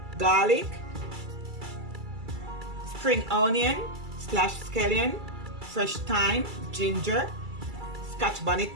garlic, spring onion / scallion, fresh thyme, ginger, scotch bonnet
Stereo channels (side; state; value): left; late; 2.3 ms